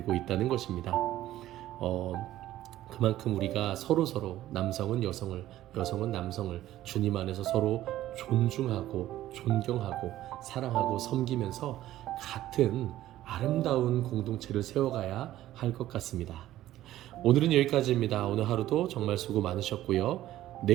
있다는 것입니다. 그만큼 우리가 서로 남성은 여성을, 여성은 남성을 주님 안에서 서로 존중하고 존경하고 사랑하고 섬기면서 같은 아름다운 공동체를 세워가야 할 것 같습니다. 오늘은 여기까지입니다. 오늘 하루도 정말 수고 많으셨고요.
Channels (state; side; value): quieter; left; 14.1 dB